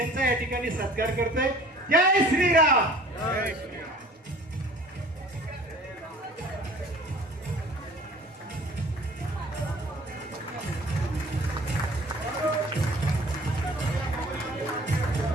या ठिकाणी सत्कार करतोय. जय श्रीराम. जय श्रीराम.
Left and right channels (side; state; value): both; normal; correlation 0.48